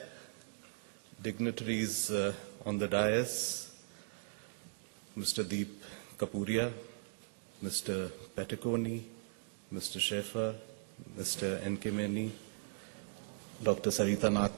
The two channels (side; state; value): left; silent; digital silence